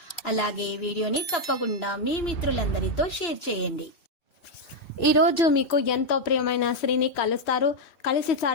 అలాగే ఈ వీడియోని తప్పకుండా మీ మిత్రులందరితో షేర్ చేయండి. ఈరోజు మీకు ఎంతో ప్రియమైన స్త్రీని కలుస్తారు, కలిసి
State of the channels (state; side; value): late; right; 2.7 ms